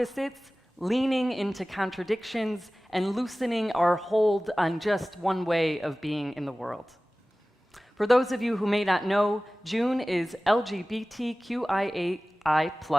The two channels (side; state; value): both; normal; correlation 0.97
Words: leaning into contradictions, and loosening our hold on just one way of being in the world. For those of you who may not know, June is LGBTQIA